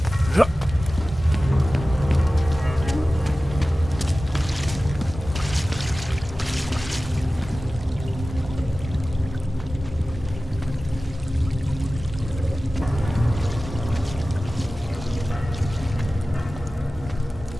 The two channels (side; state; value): both; normal; correlation 0.96